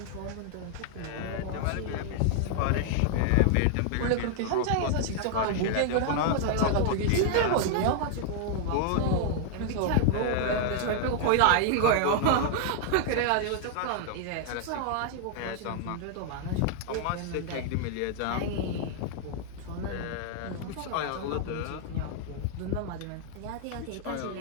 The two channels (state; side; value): different; both; correlation 0.00